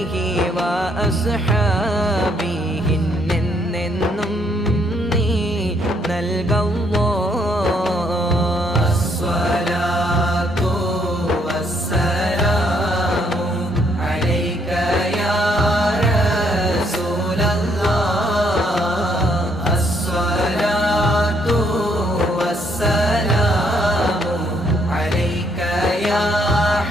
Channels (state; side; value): normal; both; correlation 0.70